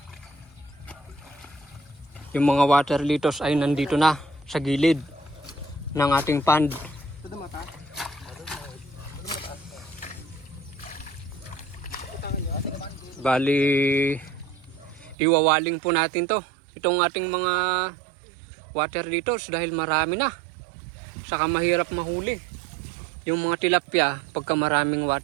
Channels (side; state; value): left; drops out; at 15.2 s